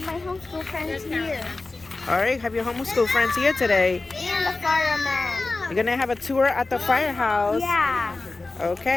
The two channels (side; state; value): right; quieter; 3.4 dB